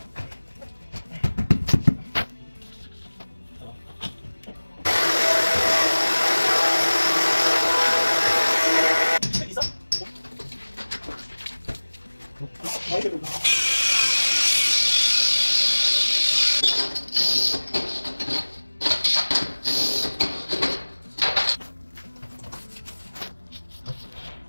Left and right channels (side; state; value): both; inverted; correlation -1.00